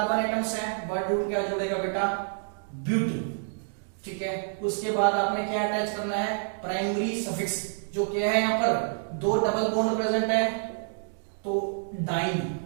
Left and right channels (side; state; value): left; silent; digital silence